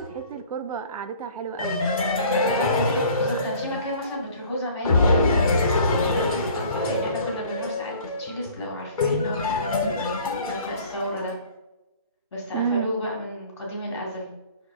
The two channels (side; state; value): both; inverted; correlation -0.50